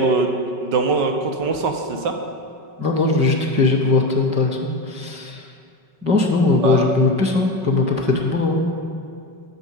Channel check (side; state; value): left; late; 5.3 ms